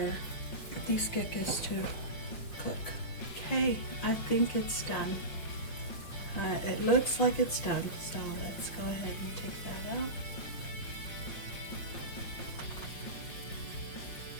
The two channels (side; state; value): right; late; 5.7 ms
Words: these kekes to cook. Okay, I think it's done. It looks like it's done, so let's go ahead and take that out.